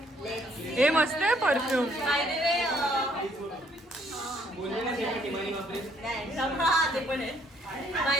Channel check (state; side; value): normal; both; correlation 0.66